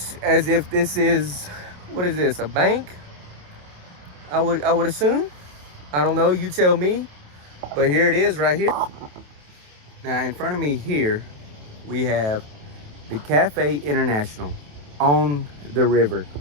as if this is, what is this, a bank? I would assume. I don't know, you tell me. But here it is right here. Now, in front of me here, we have the Cafe International on the river.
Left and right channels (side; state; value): left; late; 27 ms